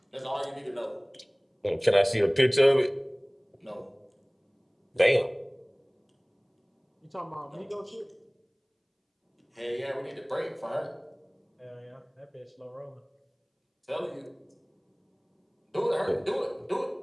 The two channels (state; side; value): identical; both; correlation 1.00